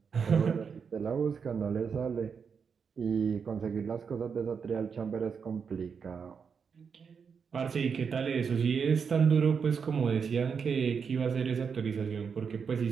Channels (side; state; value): left; quieter; 6.2 dB